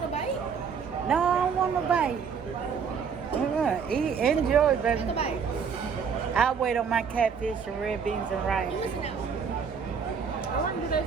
a bite? No, I don't want no bite. Eat, enjoy, baby. Take a bite. I'll wait on my catfish and red beans and rice. You listen now. I wonder do they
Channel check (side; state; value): left; quieter; 6.5 dB